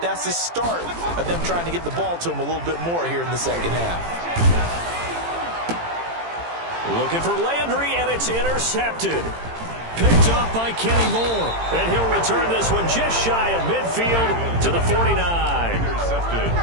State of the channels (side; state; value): left; late; 18 ms